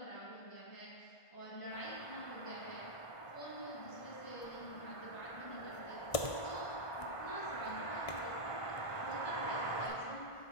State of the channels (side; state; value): right; late; 1.6 ms